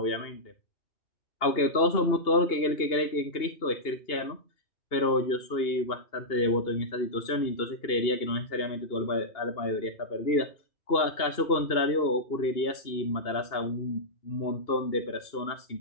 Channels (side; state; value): right; late; 2.8 ms